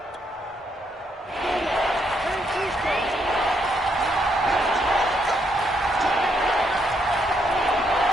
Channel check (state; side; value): normal; both; correlation 0.75